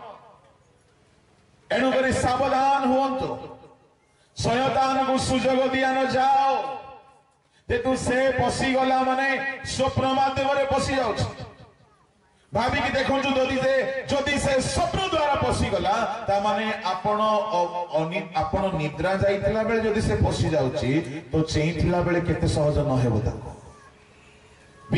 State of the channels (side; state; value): both; identical; correlation 1.00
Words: एनु करी सावधान हुंतु शयतान को सुयोग दिया न जाओ ते तू से पसी गला माने स्वप्न माध्यम रे पसी जाउछ भाभी की देखो जदि से स्वप्न द्वारा पसी गला ता माने आपण निद्रा जाइतला बेले जदि से पसी जाउची तो चेइतला बेले केते सहज न हेबो ताको